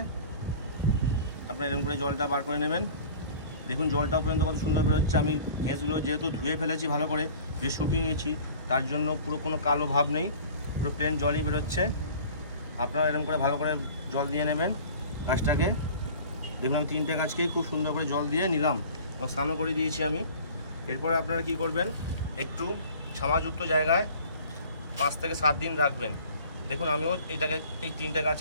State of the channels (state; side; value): inverted; both; correlation -0.45